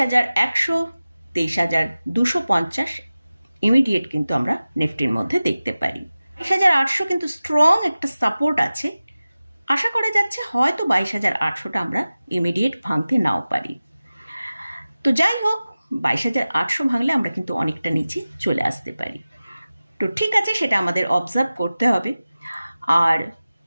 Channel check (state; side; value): inverted; both; correlation -0.96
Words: 23,250 ইমিডিয়েট কিন্তু আমরা নিফটির মধ্যে দেখতে পারি। 23,800 কিন্তু স্ট্রং একটা সাপোর্ট আছে। আশা করা যাচ্ছে হয়তো 22,800টা আমরা ইমিডিয়েট ভাঙতে নাও পারি। তো যাই হোক, 22,800 ভাঙলে আমরা কিন্তু অনেকটা নিচে চলে আসতে পারি। তো ঠিক আছে, সেটা আমাদের অবজার্ভ করতে হবে। আর